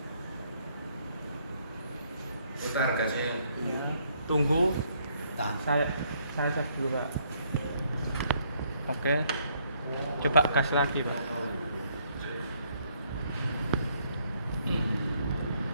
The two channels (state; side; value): inverted; both; correlation -0.69